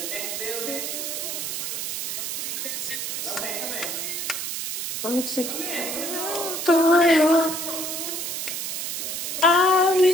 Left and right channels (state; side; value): noise; right; hiss, 3 dB below the sound